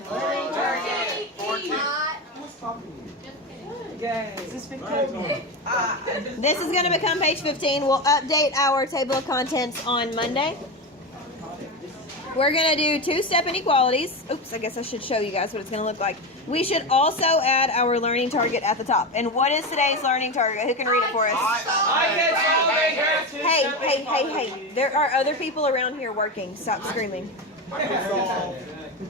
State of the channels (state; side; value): normal; both; correlation 0.18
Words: This is going to become page 15. We'll update our table of contents on Monday. We're going to do two-step inequalities. Oops, I guess I should show you guys what it's going to look like. We should also add our learning target at the top. And what is today's learning target? Who can read it for us? Hey. There are other people around here working. Stop screaming.